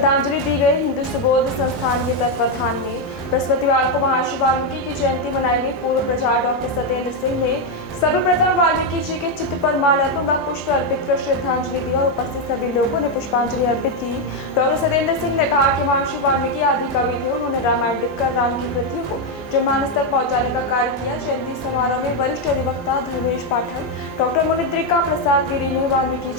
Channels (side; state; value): both; normal; correlation 0.03